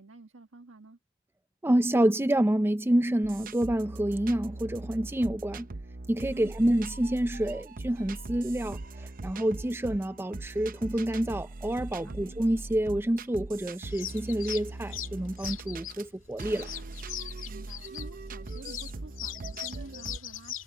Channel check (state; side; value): normal; both; correlation 0.91